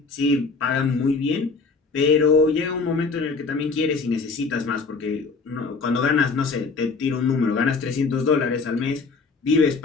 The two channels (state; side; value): quieter; right; 4.4 dB